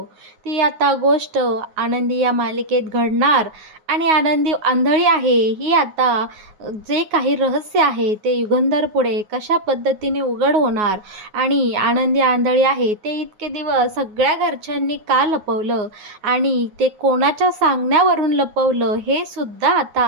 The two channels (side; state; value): left; late; 9.5 ms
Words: ती आता गोष्ट आनंदी या मालिकेत घडणार. आणि आनंदी आंधळी आहे ही आता जे काही रहस्य आहे ते युगंधर पुढे कशा पद्धतीने उघड होणार. आणि आनंदी आंधळी आहे ते इतके दिवस सगळ्या घरच्यांनी का लपवलं आणि ते कोणाच्या सांगण्यावरून लपवलं हे सुद्धा